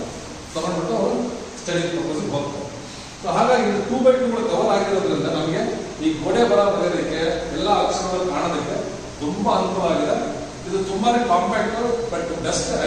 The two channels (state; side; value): identical; both; correlation 1.00